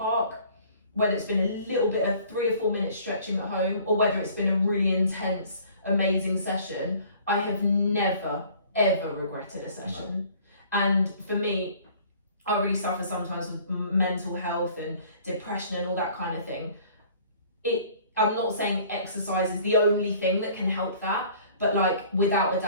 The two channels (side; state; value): both; inverted; correlation -0.52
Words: whether it's been a little bit of 3 or 4 minutes stretching at home, or whether it's been a really intense, amazing session, I have never, ever regretted a session. No. And for me, I really suffer sometimes with mental health and depression and all that kind of thing. I'm not saying exercise is the only thing that can help that, but like without a